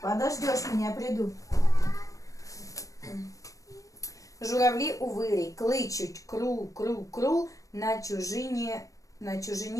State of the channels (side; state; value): right; late; 0.16 ms